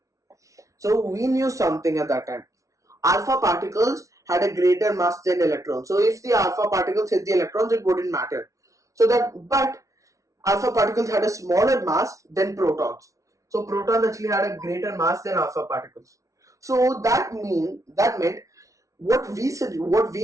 So we knew something at that time. Alpha particles had a greater mass than electrons. So if the alpha particles hit the electrons, it wouldn't matter. But alpha particles had a smaller mass than protons. So protons actually had a greater mass than alpha particles. So that meant what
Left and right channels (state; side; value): late; left; 0.16 ms